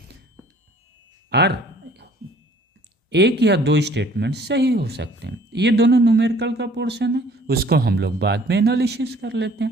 R. एक या दो स्टेटमेंट सही हो सकते हैं। ये दोनों न्यूमेरिकल का पोर्शन है, उसको हम लोग बाद में एनालिसिस कर लेते हैं।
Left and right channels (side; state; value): both; normal; correlation 0.55